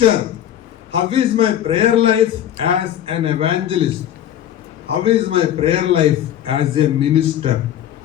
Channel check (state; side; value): quieter; right; 11.0 dB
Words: how is my prayer life as an evangelist, how is my prayer life as a minister.